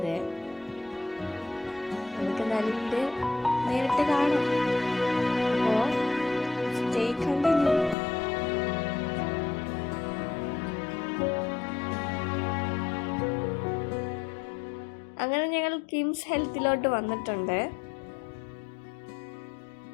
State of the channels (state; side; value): drops out; right; at 8.0 s